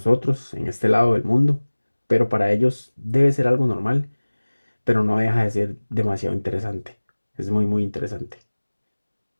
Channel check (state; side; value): inverted; both; correlation -1.00